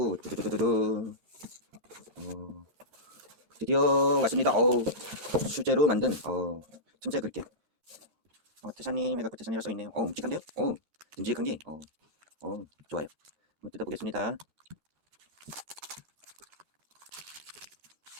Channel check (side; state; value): left; late; 9.4 ms